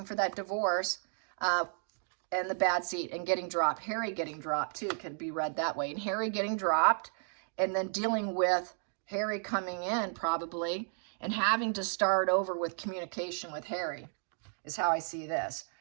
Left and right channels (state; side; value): silent; left; 56 dB below the other